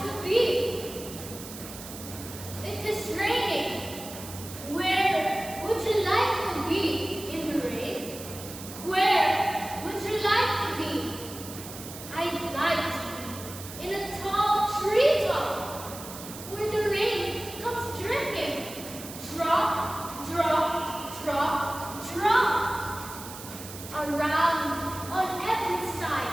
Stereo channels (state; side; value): noise; right; hiss, 13 dB below the sound